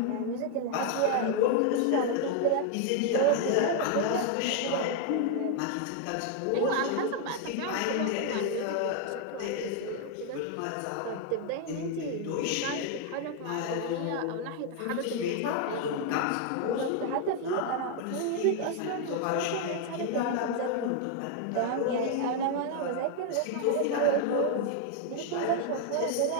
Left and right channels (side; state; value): both; different; correlation 0.01